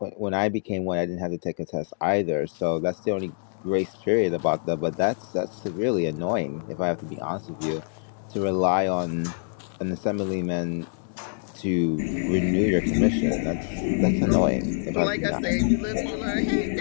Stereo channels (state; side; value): silent; right; digital silence